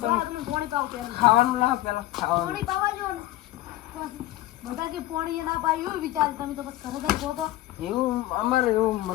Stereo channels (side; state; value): right; quieter; 15.7 dB